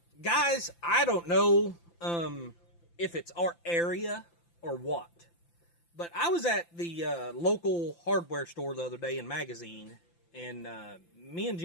Guys, I don't know if it's our area or what, but I was at the local hardware store the other day in Magazine, and me and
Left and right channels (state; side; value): late; right; 5.9 ms